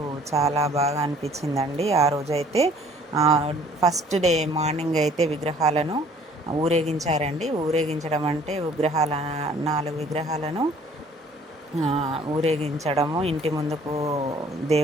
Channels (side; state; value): both; normal; correlation 0.56